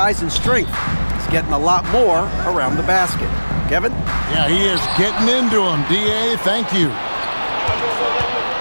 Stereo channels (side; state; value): both; inverted; correlation -1.00